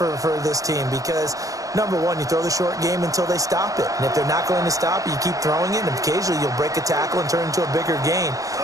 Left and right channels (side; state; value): left; late; 0.16 ms